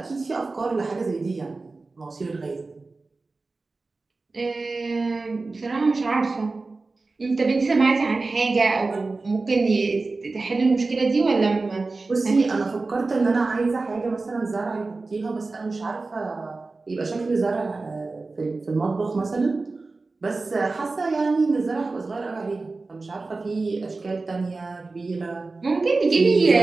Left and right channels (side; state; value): left; quieter; 3.6 dB